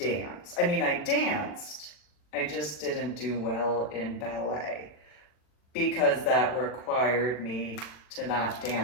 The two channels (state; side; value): late; right; 40 ms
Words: I mean, I danced, I just didn't do well in ballet because that required me to not